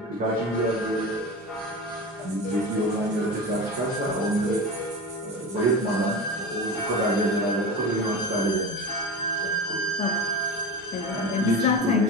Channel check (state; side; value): normal; both; correlation 0.27